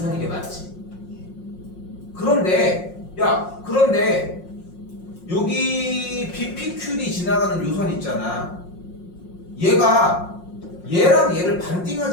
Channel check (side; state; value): right; late; 5.6 ms